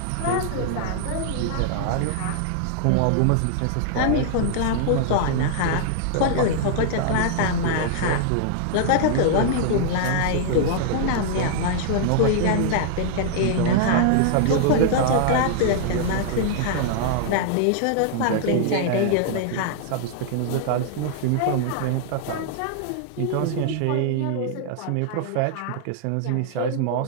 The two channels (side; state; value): both; different; correlation -0.01